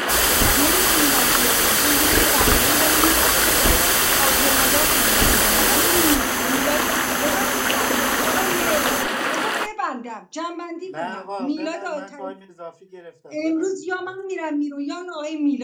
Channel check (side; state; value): both; identical; correlation 1.00